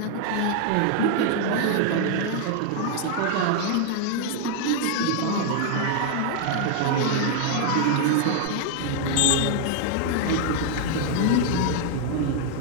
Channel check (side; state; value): both; different; correlation 0.00